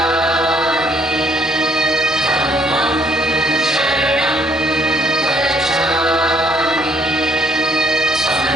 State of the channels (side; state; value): both; normal; correlation 0.65